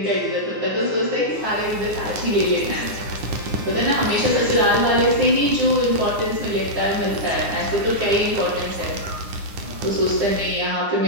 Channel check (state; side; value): late; left; 9.7 ms